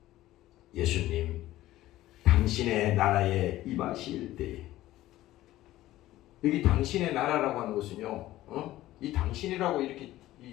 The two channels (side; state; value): right; quieter; 15.4 dB